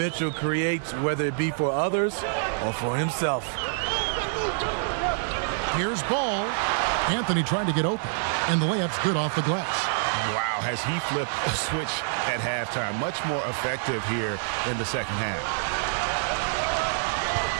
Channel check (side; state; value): left; silent; digital silence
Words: creates, whether it be for others or for himself. Here's Ball. Anthony trying to get open, and the layup's good off the glass. Wow, has he flipped a switch at halftime. Much more effective here in the second half.